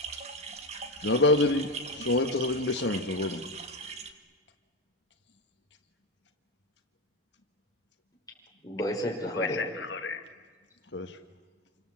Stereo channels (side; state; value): both; normal; correlation 0.16